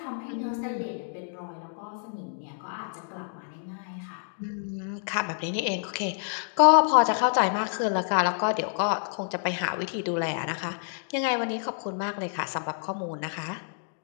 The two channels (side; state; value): right; silent; digital silence